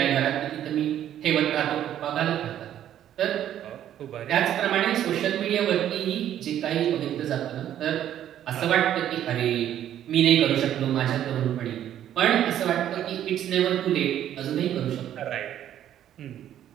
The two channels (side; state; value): left; quieter; 11.1 dB